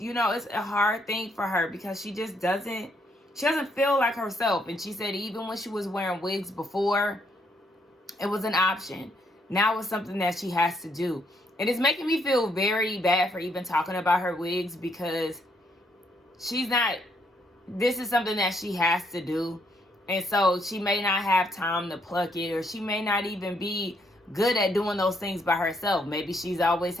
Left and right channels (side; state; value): both; normal; correlation 0.73